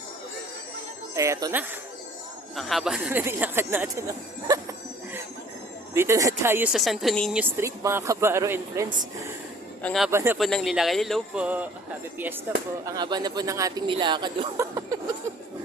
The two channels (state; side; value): normal; both; correlation 0.54